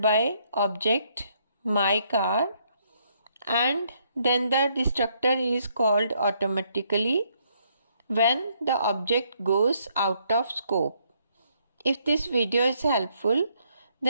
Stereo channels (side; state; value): both; inverted; correlation -0.71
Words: by object my car and then the destructor is called automatically when the object goes out of scope. If this video is helpful,